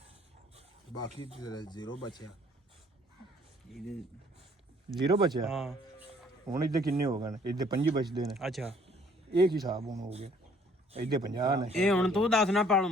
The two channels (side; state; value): both; normal; correlation 0.59